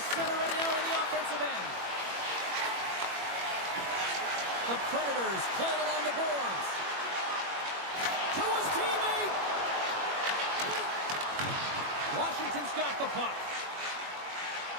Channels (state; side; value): late; left; 21 ms